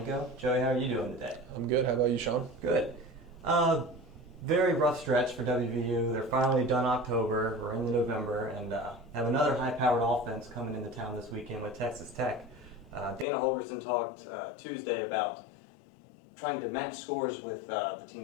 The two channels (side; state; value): right; drops out; at 13.2 s